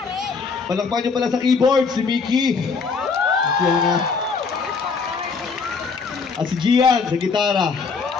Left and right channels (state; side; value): quieter; right; 5.0 dB